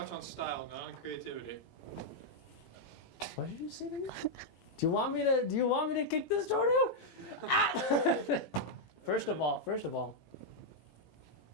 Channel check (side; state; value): right; late; 18 ms